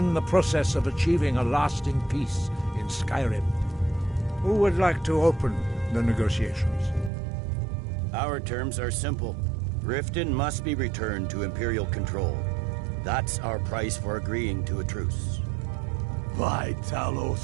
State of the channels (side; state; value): left; drops out; at 7.1 s